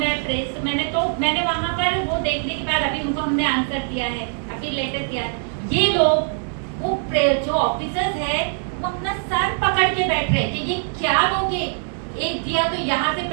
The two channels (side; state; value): left; silent; 60 dB below the other